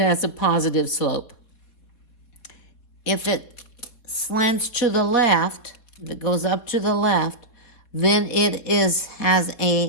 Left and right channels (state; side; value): late; right; 4.0 ms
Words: a positive slope. If it slants to the left, if it goes up to the left, then it has